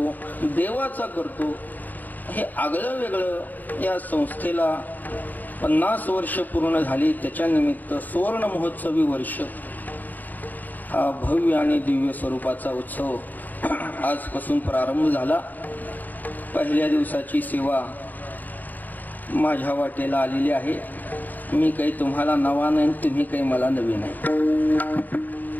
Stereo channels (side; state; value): right; late; 0.085 ms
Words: देवाचा करतो. हे आगळं वेगळं. या संस्थेला 50 वर्ष पूर्ण झाली, त्याच्या निमित्त सुवर्ण महोत्सवी वर्ष हा भव्य आणि दिव्य स्वरूपाचा उत्सव आजपासून प्रारंभ झाला. पहिल्या दिवसाची सेवा माझ्या वाटेला आलेली आहे. मी काही तुम्हाला नवा नाही, तुम्ही काही मला नवीन नाही,